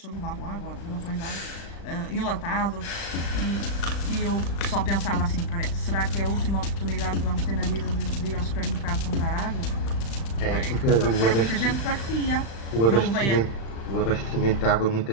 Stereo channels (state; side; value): late; right; 35 ms